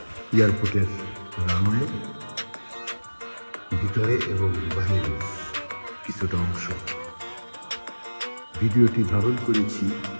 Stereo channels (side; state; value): both; inverted; correlation -1.00